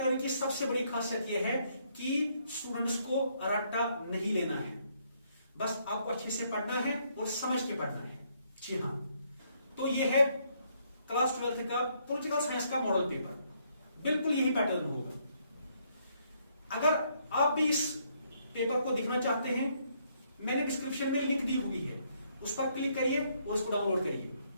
की सबसे बड़ी खासियत यह है कि स्टूडेंट्स को रट्टा नहीं लेना है, बस आपको अच्छे से पढ़ना है और समझ के पढ़ना है। जी हाँ, तो ये है क्लास 12th का पॉलिटिकल साइंस का मॉडल पेपर, बिल्कुल यही पैटर्न होगा। अगर आप भी इस पेपर को देखना चाहते हैं, मैंने डिस्क्रिप्शन में लिंक दी हुई है, उस पर क्लिक करिए और इसको डाउनलोड करिए,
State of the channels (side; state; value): both; inverted; correlation -0.71